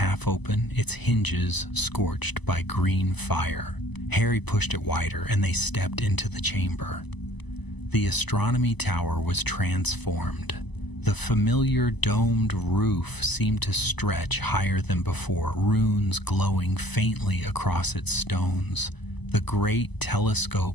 open, its hinges scorched by green fire. Harry pushed it wider, and they stepped into the chamber. The astronomy tower was transformed. The familiar domed roof seemed to stretch higher than before, runes glowing faintly across its stones. The great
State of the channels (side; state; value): right; late; 1.0 ms